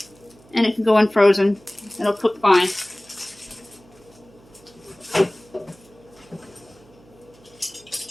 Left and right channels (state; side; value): noise; right; hum, 27 dB below the sound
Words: and it can go in frozen. It'll cook fine.